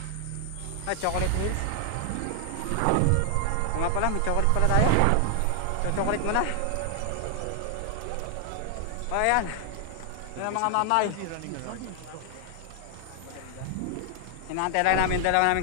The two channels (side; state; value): both; different; correlation 0.00